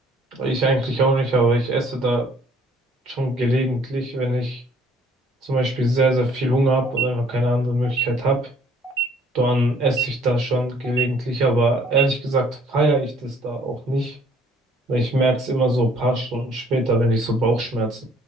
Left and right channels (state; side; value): normal; both; correlation 0.58